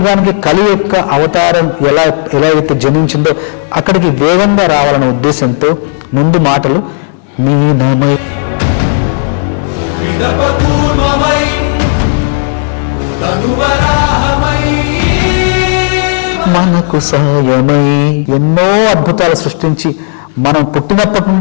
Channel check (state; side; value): silent; right; digital silence